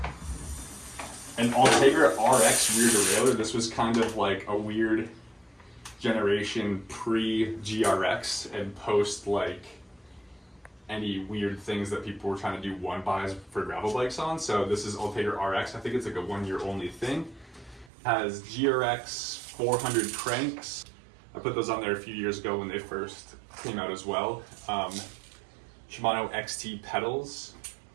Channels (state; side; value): drops out; left; at 17.9 s